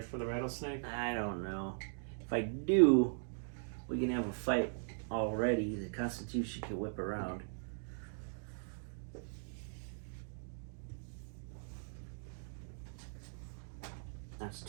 for the rattlesnake? I don't know. If I do, we can have a fight already. The Constitution can whip around. That's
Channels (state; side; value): silent; left; digital silence